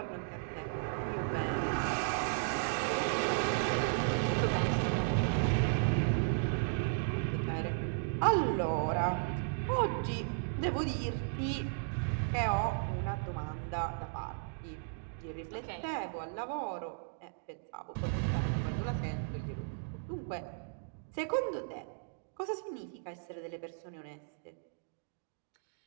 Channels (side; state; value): left; silent; digital silence